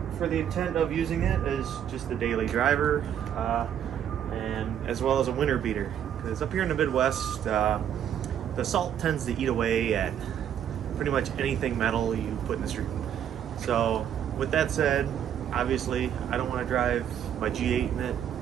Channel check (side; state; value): left; quieter; 9.6 dB